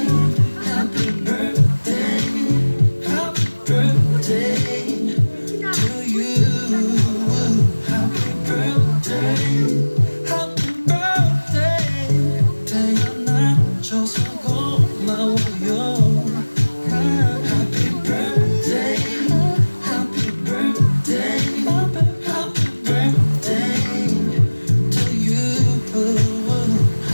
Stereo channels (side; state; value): both; inverted; correlation -1.00